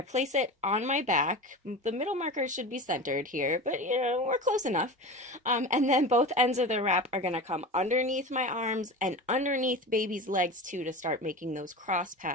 place it on my back. The middle marker should be centered here, but we're close enough. And then both ends of the wrap are going to come underneath my arms and underneath baby's legs too, to start making those cross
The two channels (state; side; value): normal; both; correlation 0.29